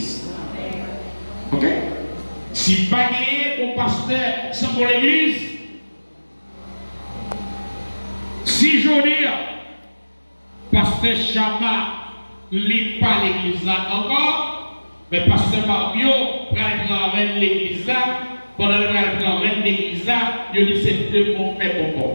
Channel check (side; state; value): both; inverted; correlation -1.00